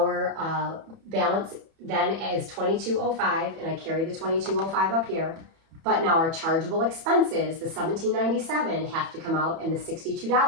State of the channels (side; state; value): left; late; 31 ms